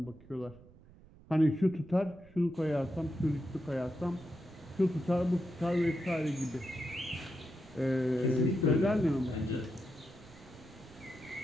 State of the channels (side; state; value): right; noise; rumble, 23 dB below the sound